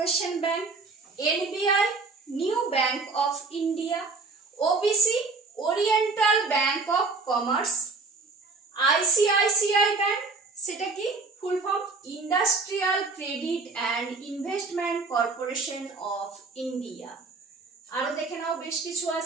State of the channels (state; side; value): quieter; left; 4.0 dB